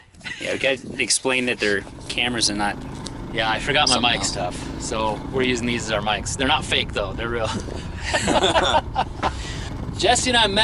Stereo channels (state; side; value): identical; both; correlation 1.00